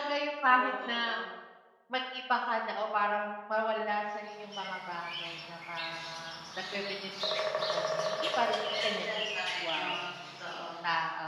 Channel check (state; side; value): identical; both; correlation 1.00